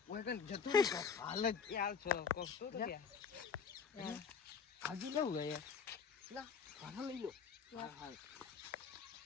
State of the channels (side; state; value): right; quieter; 6.3 dB